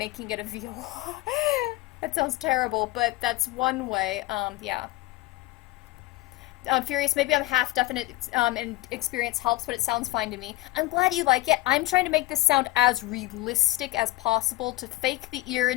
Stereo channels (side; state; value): right; quieter; 19.7 dB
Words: it a viola. That sounds terrible, but that's one way. Yeah. I'm Furious, maybe I'm half definite and experience helps, but it sounds fine to me. I'm glad you like it. I'm trying to make this sound as realistic as possible to fake the ear